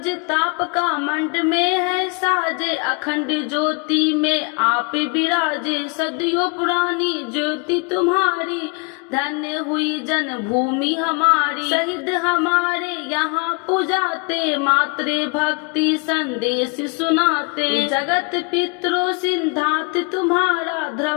ताप का मंड में है साजे, अखंड ज्योति में आप विराजे। सदियों पुरानी ज्योति तुम्हारी, धन्य हुई जन्मभूमि हमारी। शहीद हमारे यहाँ पुजाते, मातृ भक्ति संदेश सुनाते। जगत पितरो सिद्धांत तुम्हारा,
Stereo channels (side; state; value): right; quieter; 33.3 dB